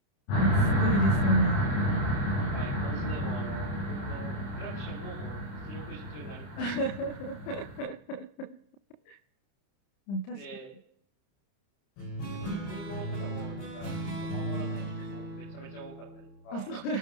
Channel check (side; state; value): right; late; 30 ms